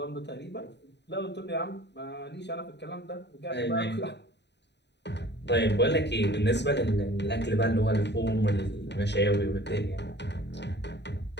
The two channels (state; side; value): late; right; 0.50 ms